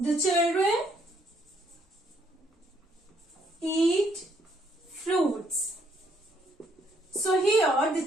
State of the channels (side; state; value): both; normal; correlation 0.69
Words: children eat fruits. So here the